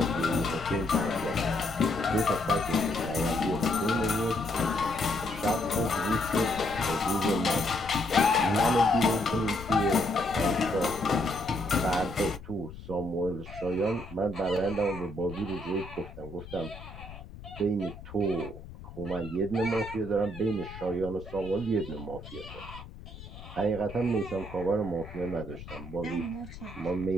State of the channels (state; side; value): noise; left; rumble, 14 dB below the sound